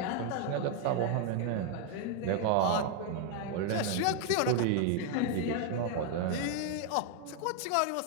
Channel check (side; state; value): both; different; correlation 0.01